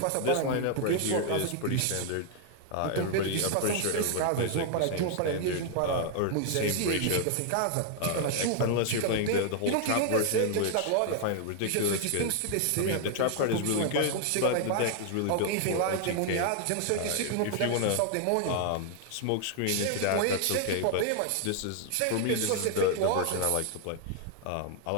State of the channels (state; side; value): different; both; correlation 0.00